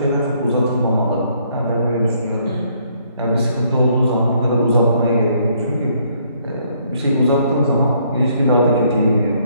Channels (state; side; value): inverted; both; correlation -0.67